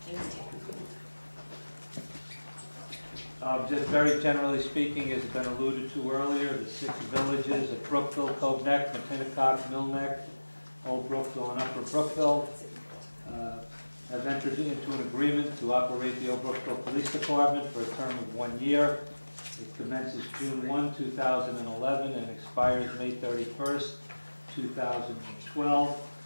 Just very generally speaking, as has been alluded to earlier, the 6 villages of Brookville, Cove Neck, Matinecock, Mill Neck, Old Brookville, and Upper Brookville have entered into an agreement to operate the Old Brookville Police Department for a term of 1 year. It commences June 1, 2011, and expires May 31st, 2012.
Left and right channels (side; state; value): both; inverted; correlation -1.00